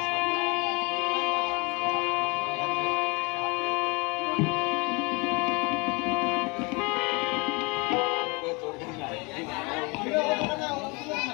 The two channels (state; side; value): quieter; right; 28.6 dB